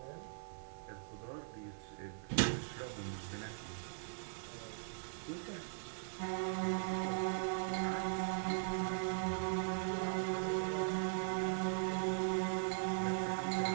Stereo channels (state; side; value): silent; left; digital silence